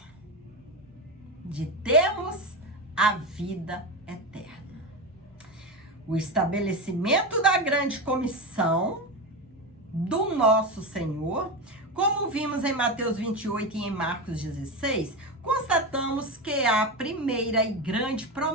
de termos a vida eterna. O estabelecimento da grande comissão do nosso Senhor, como vimos em Mateus 28 e em Marcos 16, constatamos que a primeira e grande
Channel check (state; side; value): normal; both; correlation 0.17